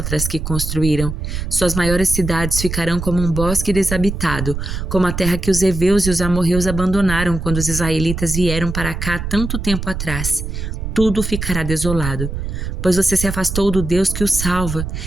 que construíram. Suas maiores cidades ficarão como um bosque desabitado, como a terra que os heveus e os amorreus abandonaram quando os israelitas vieram para cá tanto tempo atrás. Tudo ficará desolado, pois você se afastou do Deus que o salva,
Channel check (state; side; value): noise; right; rumble, 5 dB below the sound